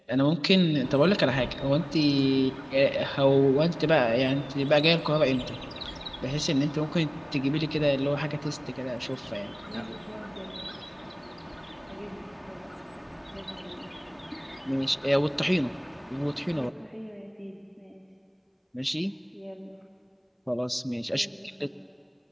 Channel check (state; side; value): identical; both; correlation 1.00